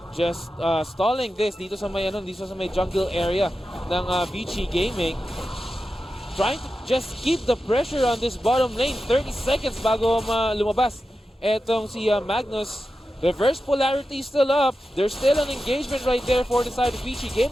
just stalling this dito sa may jungle area ng Vici Gaming. Trying to just keep the pressure on this bottom lane. 30 seconds bago lumabas etong si Magnus. Reverse polarity still up. There's still an engagement right there for the side of Vici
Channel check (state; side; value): normal; both; correlation 0.91